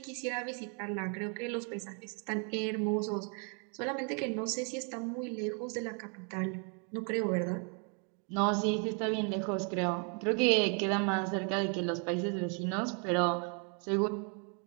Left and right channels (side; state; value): left; quieter; 38.8 dB